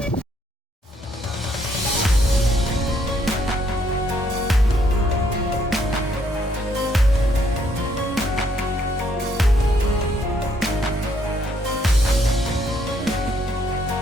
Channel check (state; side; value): normal; both; correlation 0.70